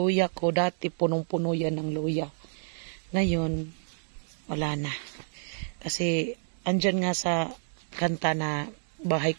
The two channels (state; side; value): silent; left; digital silence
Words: ko, dati punong-puno yan ng luya. Ngayon, wala na. Kasi, andyan nga sa kanta na bahay